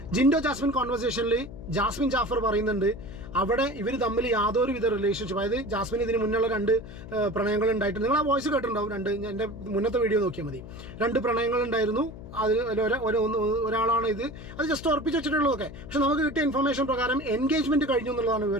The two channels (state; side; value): noise; left; hum, 13 dB below the sound